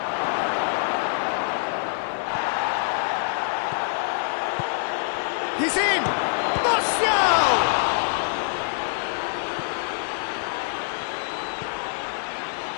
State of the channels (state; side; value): silent; right; digital silence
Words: He's in! Martial!